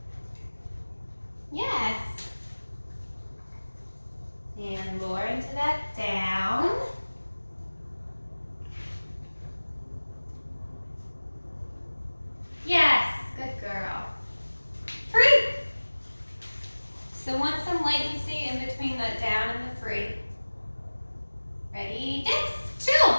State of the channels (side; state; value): both; inverted; correlation -1.00